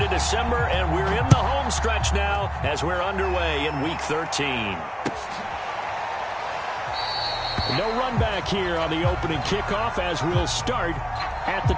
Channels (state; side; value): identical; both; correlation 1.00